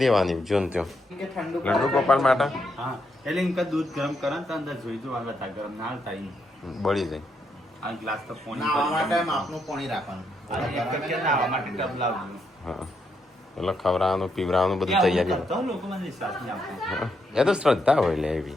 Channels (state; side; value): normal; both; correlation 0.79